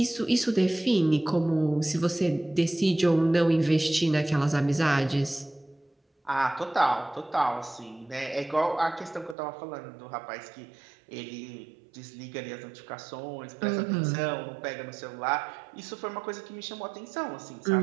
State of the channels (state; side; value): drops out; left; at 9.3 s